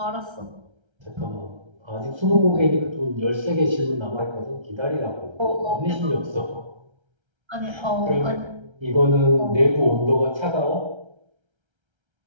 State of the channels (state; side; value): late; left; 1.3 ms